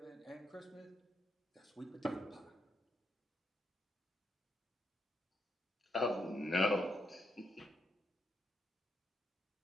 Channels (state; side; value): normal; both; correlation 0.80